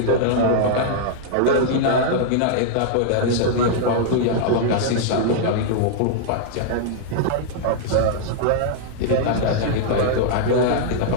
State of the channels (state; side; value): different; both; correlation -0.01